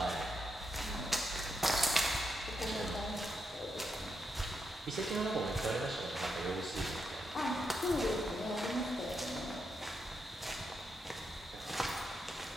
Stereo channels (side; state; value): both; normal; correlation 0.83